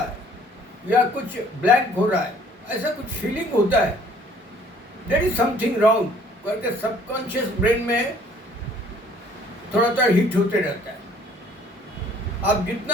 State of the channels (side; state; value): both; normal; correlation 0.57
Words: या कुछ ब्लैंक हो रहा है, ऐसा कुछ फीलिंग होता है। देयर इज समथिंग रॉन्ग करके सबकॉन्शियस ब्रेन में थोड़ा सा हिट होते रहता है। आप